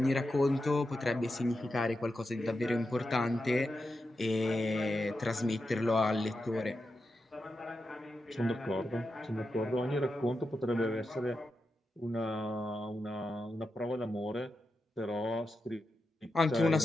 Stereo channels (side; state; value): both; normal; correlation 0.88